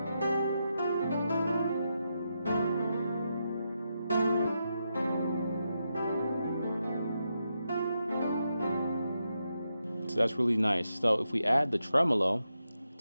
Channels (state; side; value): inverted; both; correlation -0.85